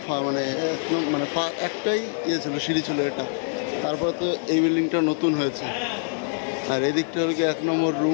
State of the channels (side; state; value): right; silent; 62 dB below the other